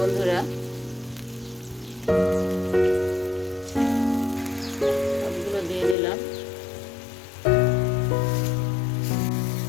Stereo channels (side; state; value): right; drops out; at 6.0 s